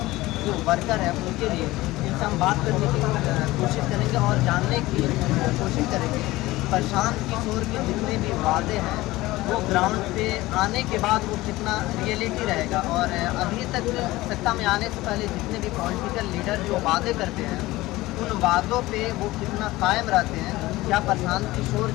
जो वर्कर हैं उनके लिए इनसे हम बात करने की कोशिश करेंगे और जानने की कोशिश करेंगे प्रशांत किशोर के जितने भी वादे हैं वो ग्राउंड पे आने के बाद वो कितना रियलिटी रहेगा। और अभी तक सत्ता में आने से पहले जितने भी पॉलिटिकल लीडर जो वादे करते हैं उन वादों पे वो कितना कायम रहते हैं। क्या प्रशांत किशोर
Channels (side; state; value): right; quieter; 18.6 dB